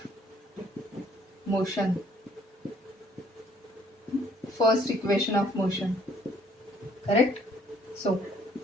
motion. First equation of motion. Correct? So,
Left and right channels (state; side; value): normal; both; correlation 0.62